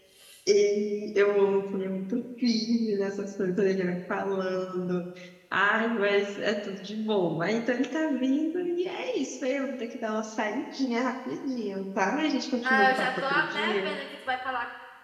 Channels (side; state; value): both; identical; correlation 1.00